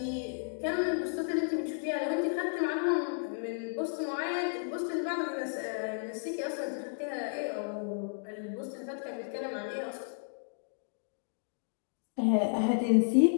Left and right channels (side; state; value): right; silent; digital silence